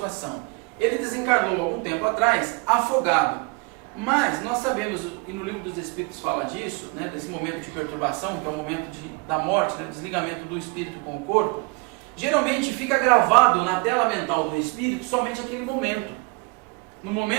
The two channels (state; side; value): quieter; left; 28.2 dB